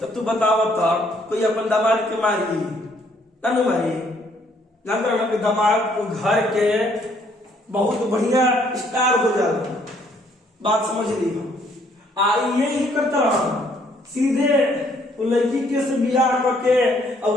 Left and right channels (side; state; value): both; normal; correlation 0.66